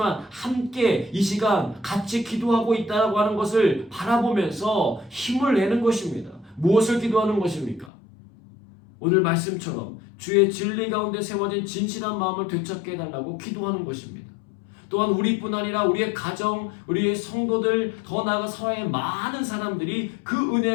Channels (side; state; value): right; drops out; at 7.9 s